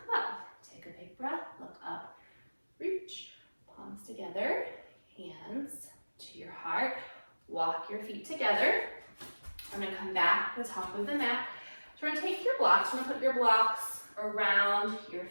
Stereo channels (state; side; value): inverted; both; correlation -1.00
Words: up. Take a big breath, look up, reach, palms together, hands to your heart. Walk your feet together. I'm going to come back to the top of the mat. So we're going to take your blocks, we're going to put your blocks around your